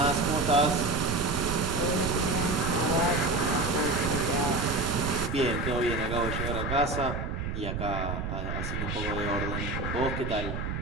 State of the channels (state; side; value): noise; right; rumble, 4 dB below the sound